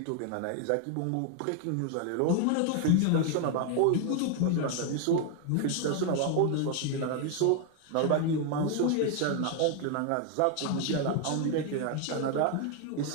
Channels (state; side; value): different; both; correlation 0.00